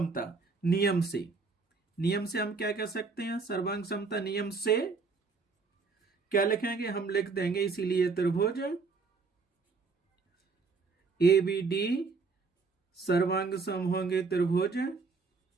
नियम से हम क्या कह सकते हैं? सर्वांग समता नियम से क्या लिखेंगे? हम लिख देंगे, इसीलिए त्रिभुज ABD सर्वांग सम होंगे त्रिभुज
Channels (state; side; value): quieter; left; 4.5 dB